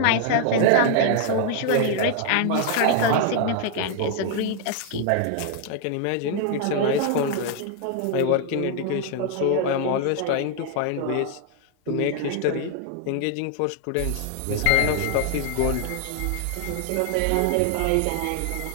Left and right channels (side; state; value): both; different; correlation 0.00